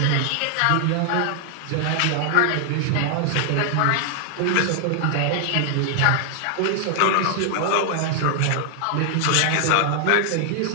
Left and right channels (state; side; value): different; both; correlation 0.00